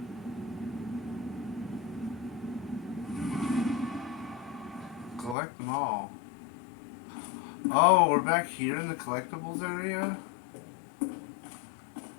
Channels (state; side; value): drops out; right; at 5.4 s